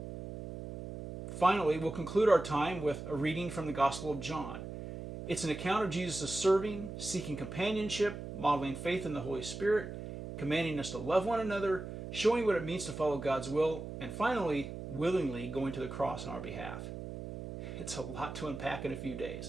Finally, we'll conclude our time with a reading from the Gospel of John. It's an account of Jesus' serving, seeking companionship, modeling faith in the Holy Spirit, commanding us to love one another, showing what it means to follow God's will, and finally, willingly going to the cross on our behalf. It's a lot to unpack in a few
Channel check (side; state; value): right; noise; hum, 8 dB below the sound